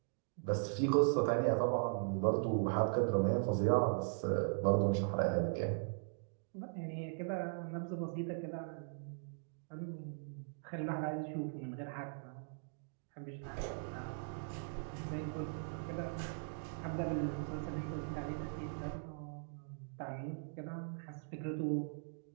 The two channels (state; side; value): silent; left; digital silence